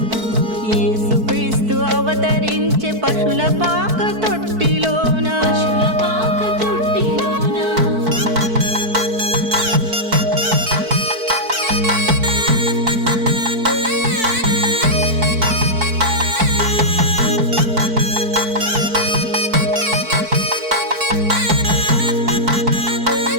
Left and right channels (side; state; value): left; late; 4.5 ms